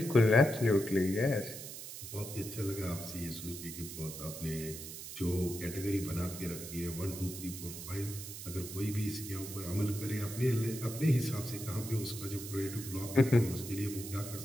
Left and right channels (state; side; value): noise; right; hiss, 10 dB below the sound